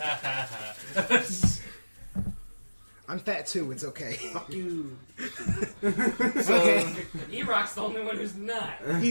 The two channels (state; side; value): inverted; both; correlation -1.00